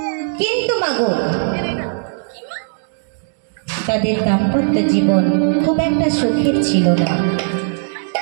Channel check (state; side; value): silent; left; digital silence